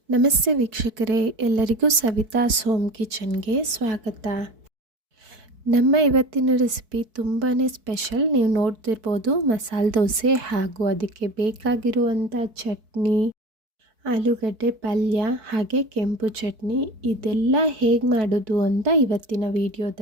ನಮಸ್ತೆ ವೀಕ್ಷಕರೇ, ಎಲ್ಲರಿಗೂ ಸವಿತಾಸ್ ಹೋಮ್ ಕಿಚನ್ಗೆ ಸ್ವಾಗತ. ನಮ್ಮ ಇವತ್ತಿನ ರೆಸಿಪಿ ತುಂಬಾ ಸ್ಪೆಷಲ್. ನೀವು ನೋಡ್ತಿರ್ಬೋದು ಮಸಾಲೆ ದೋಸೆ ಹಾಗೂ ಅದಕ್ಕೆ ಬೇಕಾಗಿರುವಂಥ ಚಟ್ನಿ, ಆಲೂಗಡ್ಡೆ ಪಲ್ಯ ಹಾಗೆ ಕೆಂಪು ಚಟ್ನಿ ಇದೆಲ್ಲ ಹೇಗೆ ಮಾಡೋದು ಅಂತ ಇವತ್ತಿನ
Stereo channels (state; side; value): late; left; 4.6 ms